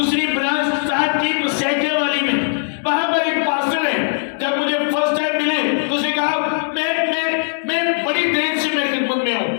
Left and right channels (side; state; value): right; silent; digital silence